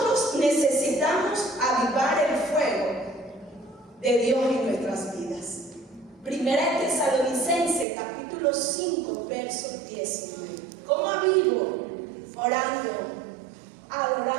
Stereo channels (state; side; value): drops out; left; at 7.9 s